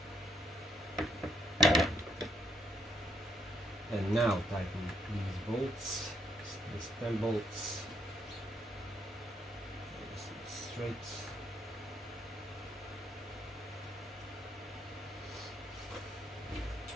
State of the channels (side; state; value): both; normal; correlation 0.71